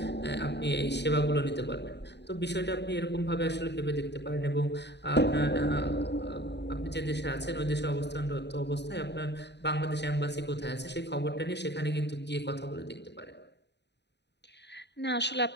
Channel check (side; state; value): right; late; 0.50 ms